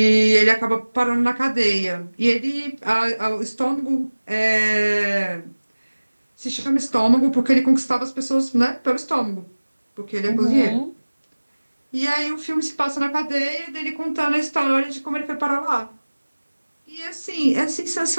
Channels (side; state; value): both; inverted; correlation -1.00